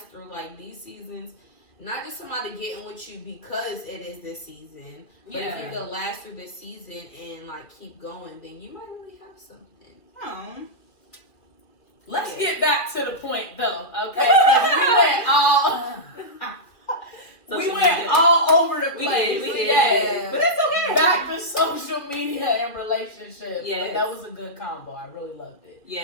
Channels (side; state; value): right; late; 2.4 ms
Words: through like these seasons, not just somebody getting with you because it is this season, but if you can last through this season and like keep going, then you might really have something. Oh. Let's get back to the point though, okay? Because we went all over the place. We did. But that's okay. Back to social media and relationships. Yes. That was a good combo. I really loved it.